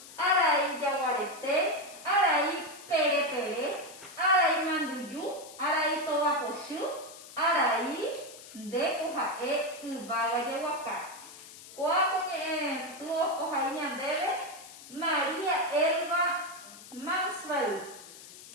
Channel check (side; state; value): left; noise; hiss, 17 dB below the sound